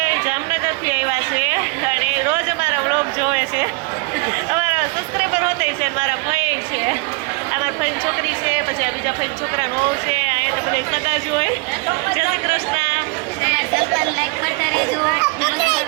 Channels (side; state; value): left; quieter; 27.7 dB